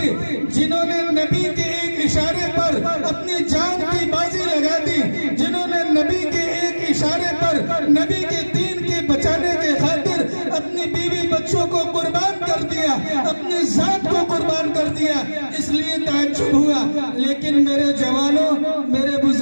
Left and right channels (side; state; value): both; inverted; correlation -1.00